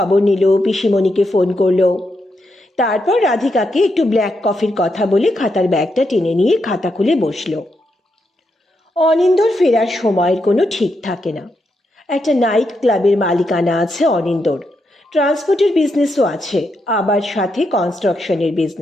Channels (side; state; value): both; normal; correlation 0.82